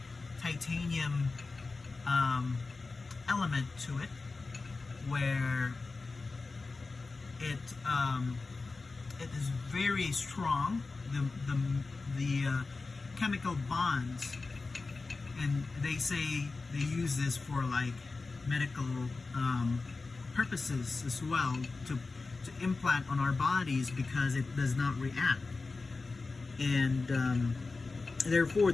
titanium element to it, where it is very strong. The chemical bonds, and they say they use this for like medical purposes as well, to implant on our bodies, because it does not react, and therefore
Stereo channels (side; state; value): right; quieter; 3.9 dB